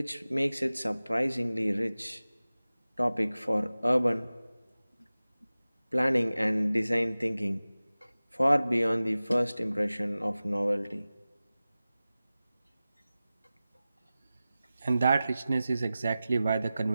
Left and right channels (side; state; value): both; inverted; correlation -0.96